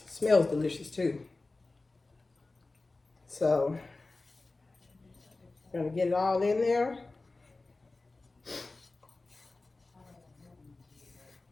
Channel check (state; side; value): quieter; right; 3.3 dB